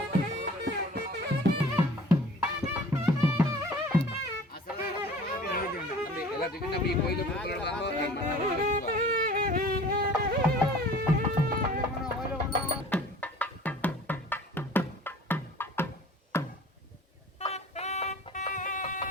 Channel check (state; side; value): normal; both; correlation 0.46